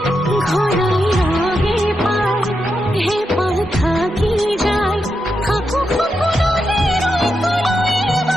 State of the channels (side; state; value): both; normal; correlation 0.85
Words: ঘরাই হে পায় হে পাল থাকি যায়, খাকু খুকুনলে রই কলই